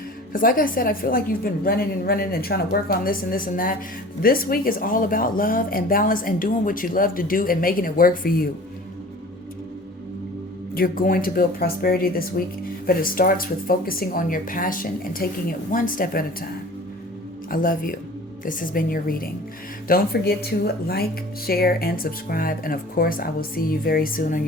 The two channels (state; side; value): normal; both; correlation 0.43